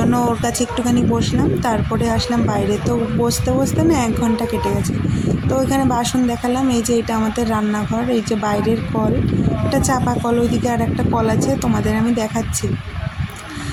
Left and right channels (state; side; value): identical; both; correlation 1.00